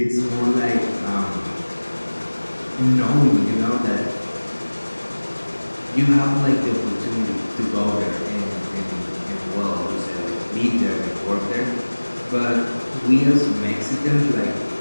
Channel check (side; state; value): both; inverted; correlation -1.00